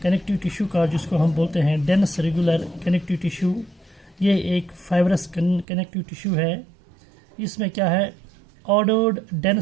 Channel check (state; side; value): drops out; left; at 5.7 s